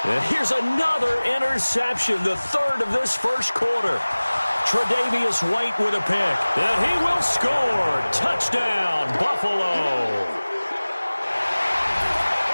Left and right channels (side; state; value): both; inverted; correlation -1.00